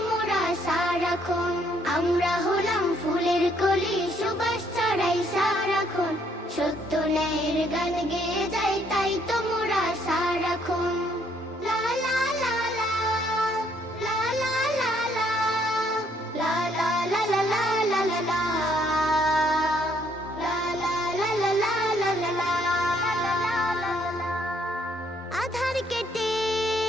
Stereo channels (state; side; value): normal; both; correlation 0.68